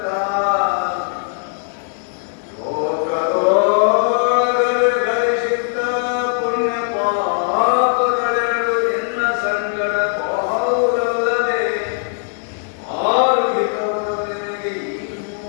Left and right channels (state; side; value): silent; right; digital silence